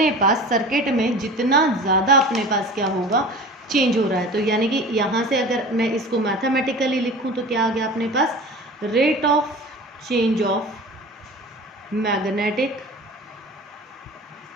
पास सर्किट में जितना ज़्यादा अपने पास क्या होगा, चेंज हो रहा है। तो यानी कि यहाँ से अगर मैं इसको मैथमेटिकली लिखूँ तो क्या आ गया अपने पास, rate of change of magnetic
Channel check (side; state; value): both; normal; correlation 0.37